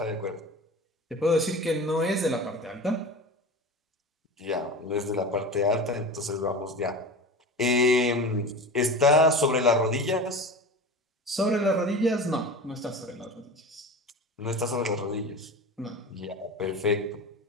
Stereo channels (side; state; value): both; normal; correlation 0.32